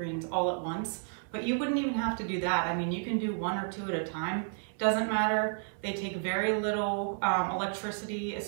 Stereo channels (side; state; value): left; silent; 57 dB below the other